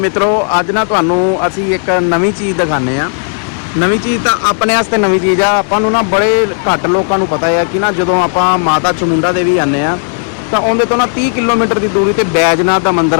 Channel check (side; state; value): right; silent; 70 dB below the other